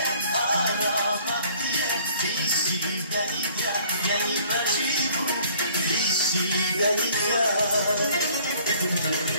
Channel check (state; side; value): inverted; both; correlation -0.56